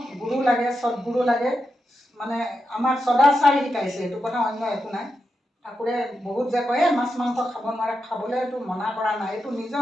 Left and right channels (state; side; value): normal; both; correlation 0.87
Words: গুৰু লাগে, সৎগুৰু লাগে। মানে আমাক সদাচাৰ শিকাইছে, এইটো কথা অন্য একো নাই। ঠাকুৰে বহুত যে কয় মাছ মাংস খাব নোৱাৰে, খাবলৈতো মনা কৰা নাই। এইটো নিজৰ